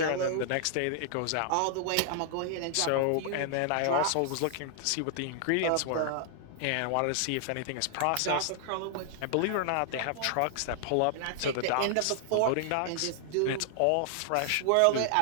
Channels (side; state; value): both; different; correlation 0.00